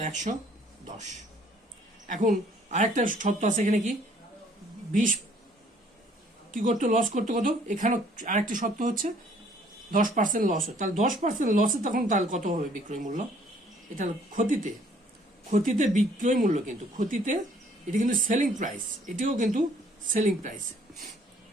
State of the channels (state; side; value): normal; both; correlation 0.60